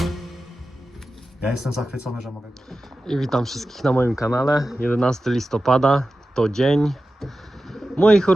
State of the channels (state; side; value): normal; both; correlation 0.93